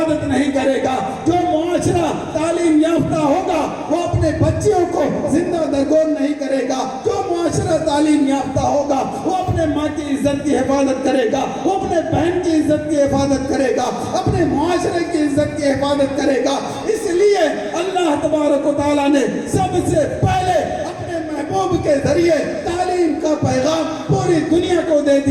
نہیں کرے گا. جو معاشرہ تعلیم یافتہ ہوگا وہ اپنے بچیوں کو زندہ درگور نہیں کرے گا. جو معاشرہ تعلیم یافتہ ہوگا وہ اپنے ماں کی عزت کی حفاظت کرے گا، وہ اپنے بہن کی عزت کی حفاظت کرے گا، اپنے معاشرے کی عزت کی حفاظت کرے گا. اس لیے اللہ تبارک و تعالیٰ نے سب سے پہلے اپنے محبوب کے ذریعے تعلیم کا پیغام پوری دنیا کو دے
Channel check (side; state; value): both; identical; correlation 1.00